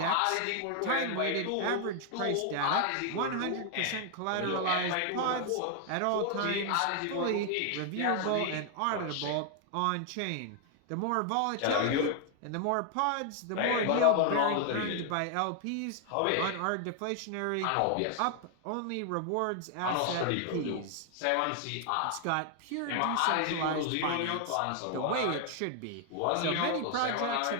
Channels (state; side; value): different; both; correlation 0.00